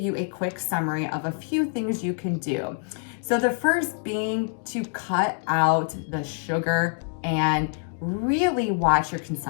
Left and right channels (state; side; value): silent; right; 56 dB below the other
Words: a quick summary of a few things you can do. So the first being to cut out the sugar and really watch your